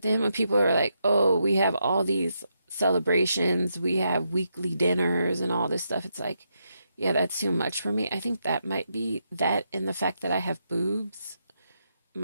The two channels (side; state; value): both; inverted; correlation -0.82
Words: then when people are like, oh, we have all these celebrations, we have weekly dinners and all this stuff, it's like, yeah, that's too much for me. I think that might be that and the fact that I have boobs